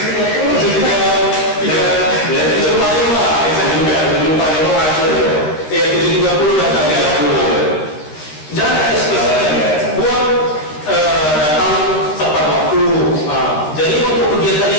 datang ya. Jangan spesifikkan. Buat datang tepat waktu. Jadi untuk kegiatan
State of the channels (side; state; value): right; late; 13 ms